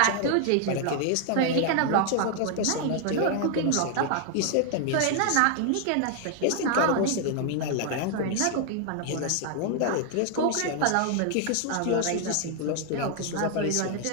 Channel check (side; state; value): both; different; correlation 0.00